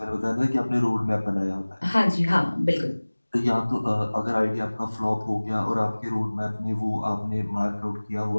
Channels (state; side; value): inverted; both; correlation -1.00